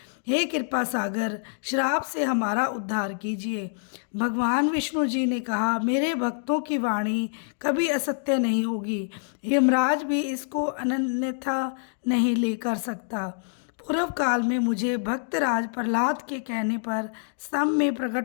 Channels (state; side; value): silent; right; digital silence